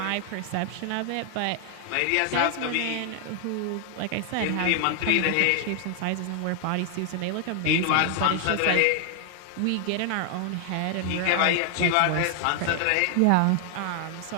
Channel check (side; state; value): both; different; correlation 0.00